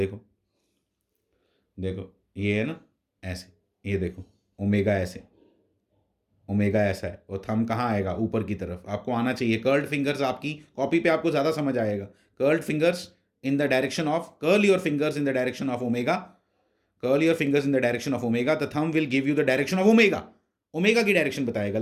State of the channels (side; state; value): both; identical; correlation 1.00